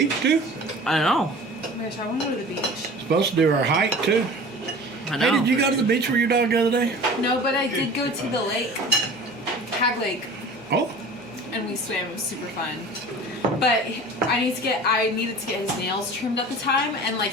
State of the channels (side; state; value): both; normal; correlation 0.41